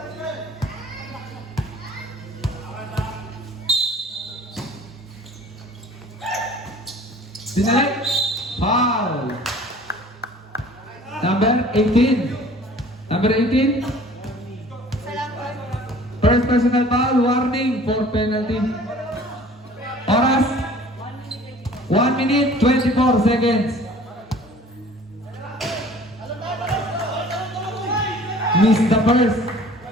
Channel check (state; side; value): normal; both; correlation 0.49